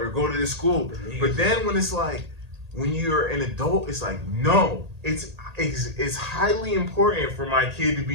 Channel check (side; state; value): left; late; 1.8 ms